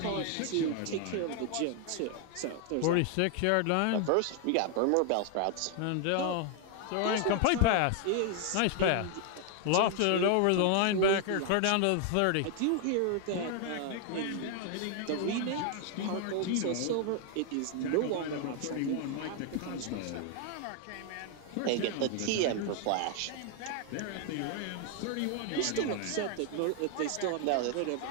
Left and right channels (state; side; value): different; both; correlation 0.00